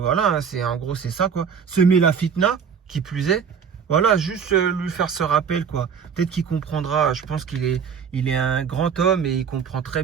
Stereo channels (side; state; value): left; quieter; 6.9 dB